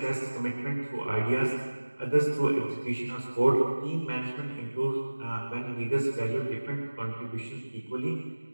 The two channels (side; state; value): both; inverted; correlation -1.00